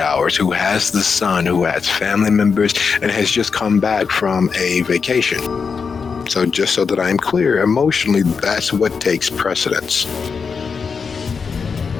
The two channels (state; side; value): quieter; right; 5.6 dB